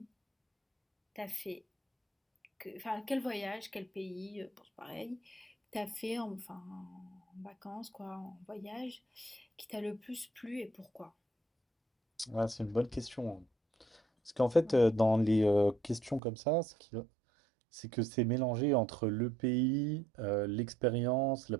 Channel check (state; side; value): drops out; left; at 16.2 s